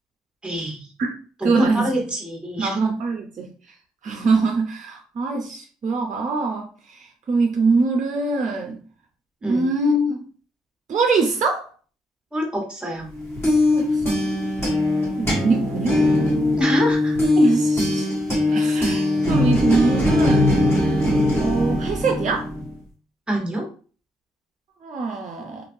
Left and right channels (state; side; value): normal; both; correlation 0.79